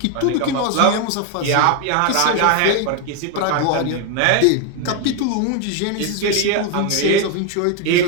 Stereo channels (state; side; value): different; both; correlation 0.01